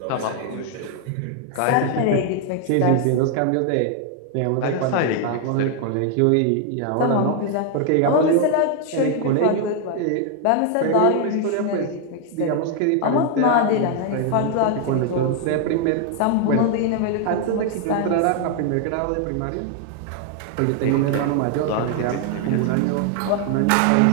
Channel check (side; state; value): both; different; correlation 0.00